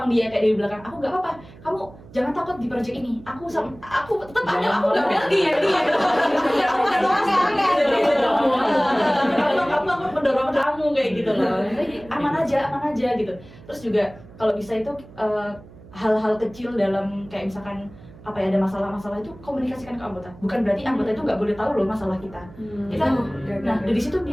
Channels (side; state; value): right; noise; hum, 20 dB below the sound